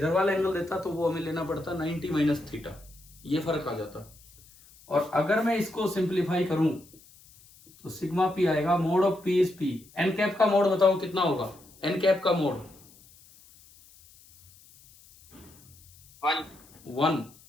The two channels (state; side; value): noise; left; hiss, 25 dB below the sound